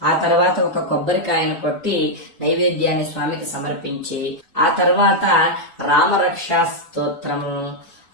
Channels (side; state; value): both; normal; correlation -0.02